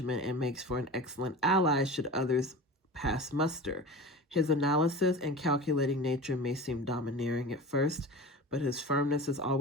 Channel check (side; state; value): both; normal; correlation 0.32